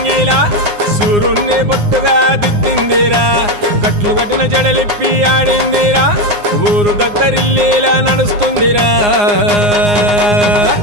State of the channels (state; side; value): late; left; 9.7 ms